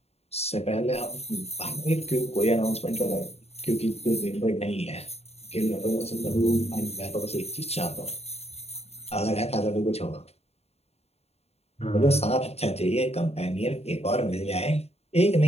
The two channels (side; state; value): right; late; 0.30 ms